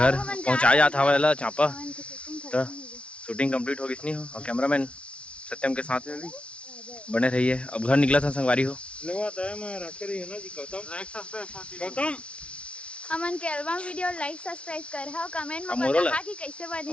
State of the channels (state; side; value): late; right; 0.060 ms